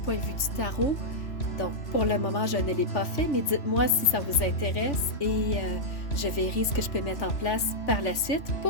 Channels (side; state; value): right; late; 3.4 ms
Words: de vue du tarot. Donc, pour le moment, je ne l'ai pas fait, mais dites-moi si ça vous intéresse et je verrai ce que je peux mettre en place par la suite